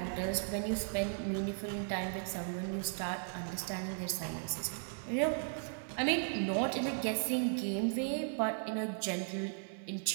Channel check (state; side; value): silent; left; digital silence